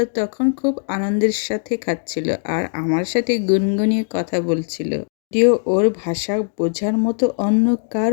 তখন খুব আনন্দের সাথে খাচ্ছিল আর আমার সাথে গুনগুনিয়ে কথা বলছিল। যদিও ওর ভাষা বোঝার মতো অন্য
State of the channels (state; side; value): silent; right; digital silence